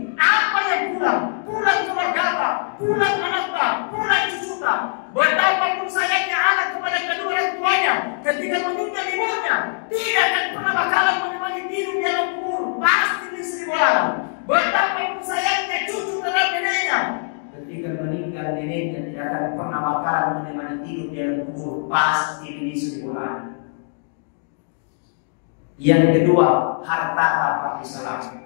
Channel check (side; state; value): right; silent; digital silence